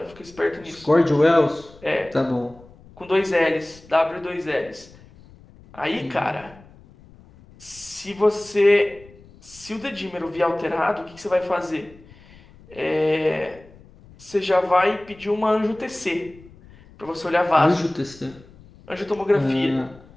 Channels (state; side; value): noise; left; rumble, 24 dB below the sound